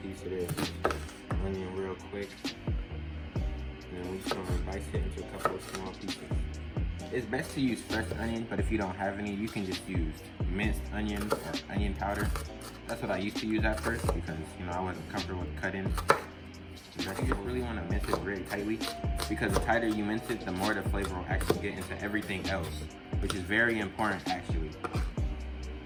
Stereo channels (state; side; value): identical; both; correlation 1.00